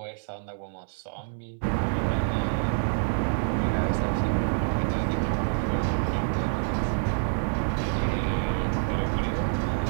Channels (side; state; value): left; silent; 60 dB below the other